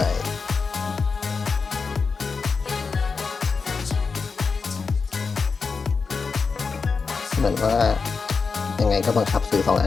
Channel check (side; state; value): right; quieter; 4.9 dB